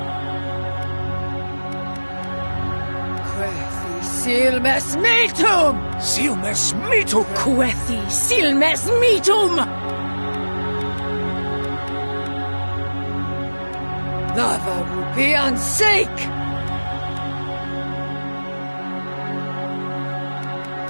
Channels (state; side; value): inverted; both; correlation -1.00